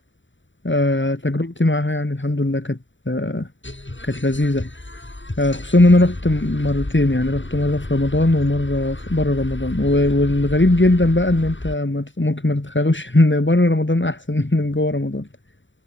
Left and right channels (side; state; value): right; late; 0.55 ms